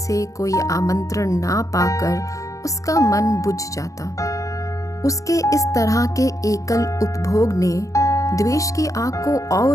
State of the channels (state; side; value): late; right; 0.16 ms